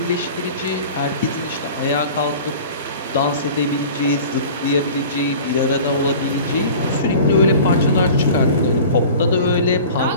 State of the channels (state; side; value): inverted; both; correlation -0.41